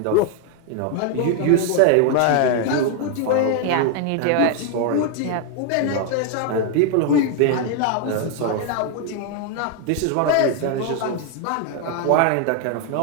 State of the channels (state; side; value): different; both; correlation 0.01